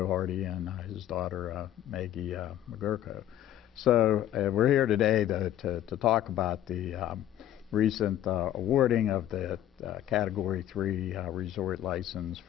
Hardy and his daughter Maggie McGurko. So we're here today to talk about the recent awarding of the Category 3 resort license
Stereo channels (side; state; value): right; quieter; 12.0 dB